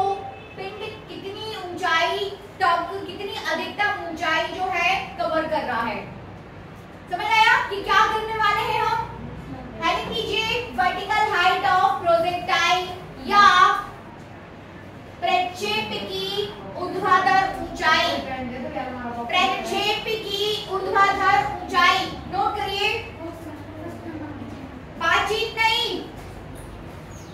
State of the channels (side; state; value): both; identical; correlation 1.00